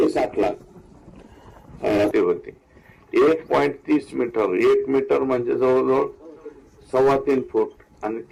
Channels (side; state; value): both; identical; correlation 1.00